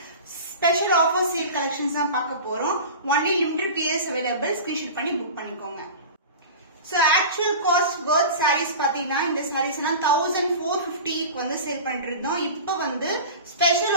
special offer sale collections தான் பார்க்க போறோம். Only limited pieces available. Screenshot பண்ணி book பண்ணிக்கோங்க. So actual cost worth sarees பாத்தீங்கன்னா இந்த sarees எல்லாம் 1450 வந்து சேல் பண்ணிருந்தோம். இப்போ வந்து ஸ்பெஷல்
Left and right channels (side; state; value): both; inverted; correlation -0.33